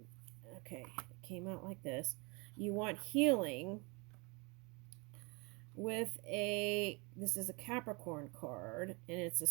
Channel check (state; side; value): quieter; left; 29.2 dB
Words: okay, it came out like this. You want healing with this is a Capricorn card, and it's a